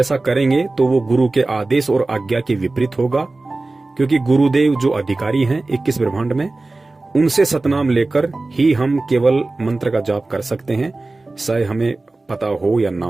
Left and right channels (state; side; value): quieter; left; 3.2 dB